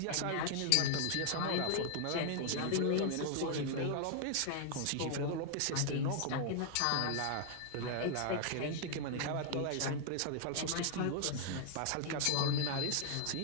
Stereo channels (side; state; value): both; different; correlation 0.00